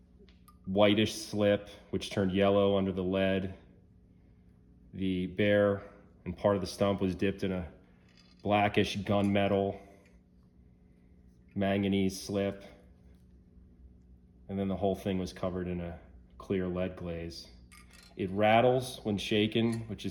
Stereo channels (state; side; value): identical; both; correlation 1.00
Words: whitish slip, which turned yellow under the lead. The bear and part of the stump was dipped in a blackish gunmetal manganese slip. And then the whole thing was covered in a clear lead glaze. It rattles when shaken, which